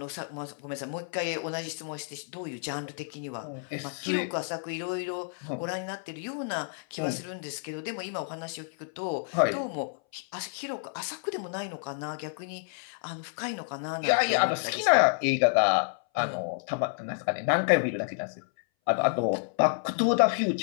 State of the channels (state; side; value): silent; right; 58 dB below the other